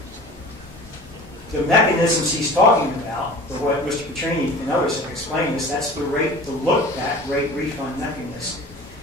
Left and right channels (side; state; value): both; normal; correlation 0.41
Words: The mechanisms he's talking about, or what Mr. Petrini and others have explained, is that's the look-back rate refund mechanism.